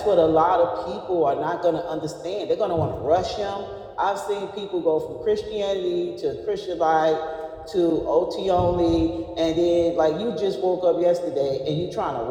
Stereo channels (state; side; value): identical; both; correlation 1.00